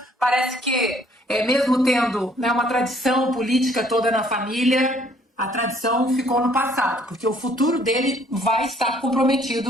parece que, mesmo tendo, né, uma tradição política toda na família, a tradição ficou no passado, porque o futuro dele vai estar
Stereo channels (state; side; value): normal; both; correlation 0.62